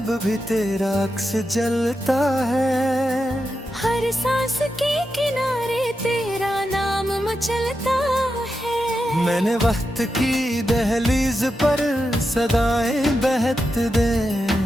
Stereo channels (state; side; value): normal; both; correlation 0.88